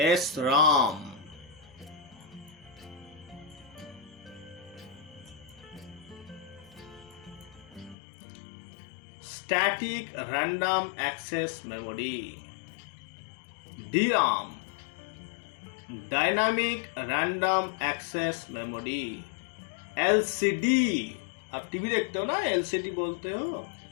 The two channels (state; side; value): drops out; right; at 8.0 s